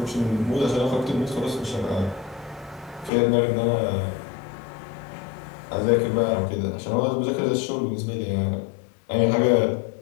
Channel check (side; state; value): right; drops out; at 3.1 s